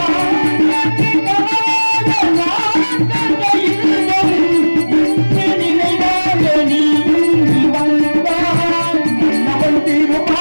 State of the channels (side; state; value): both; inverted; correlation -1.00